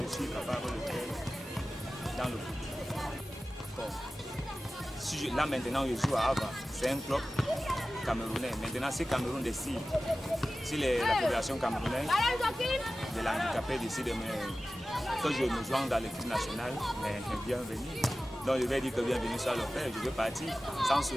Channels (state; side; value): normal; both; correlation 0.95